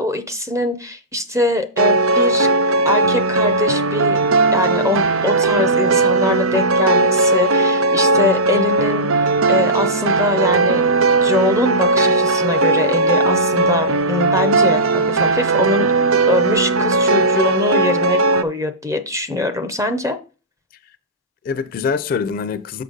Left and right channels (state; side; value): normal; both; correlation -0.19